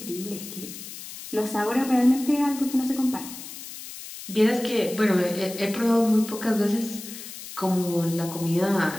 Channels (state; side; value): noise; left; hiss, 12 dB below the sound